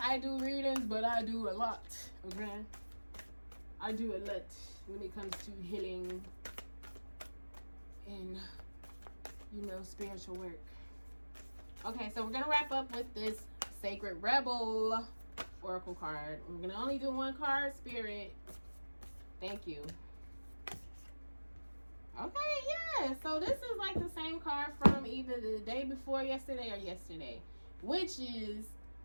do readings, but I do a lot, okay? I do a lot when it comes to healing and, you know, spiritual work. Okay, so we're going to wrap up with this Sacred Rebel Oracle card. We're going to only do one card, Spirit. Thank you. Okay, yeah. So this is like the same card from either the day before yesterday or yesterday, which is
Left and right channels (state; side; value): inverted; both; correlation -1.00